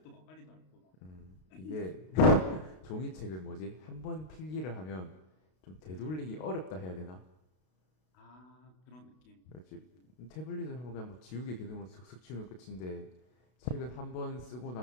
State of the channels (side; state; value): right; late; 32 ms